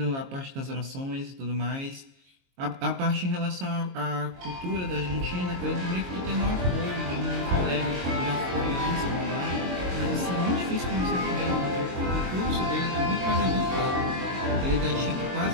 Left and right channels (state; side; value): late; left; 22 ms